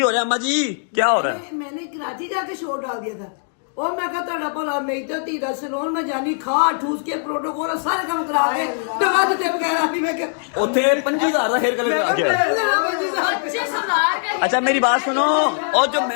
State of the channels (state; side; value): silent; right; digital silence